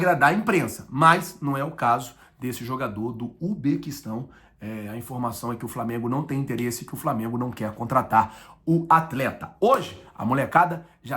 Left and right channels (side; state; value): both; identical; correlation 1.00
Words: a imprensa. Mas não é o caso desse jogador do Uzbequistão. A informação é que o Flamengo não tem interesse, que o Flamengo não quer contratar o atleta. Hoje, a molecada